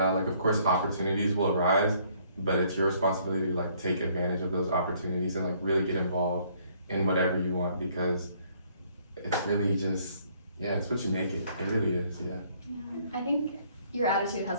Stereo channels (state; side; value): inverted; both; correlation -0.64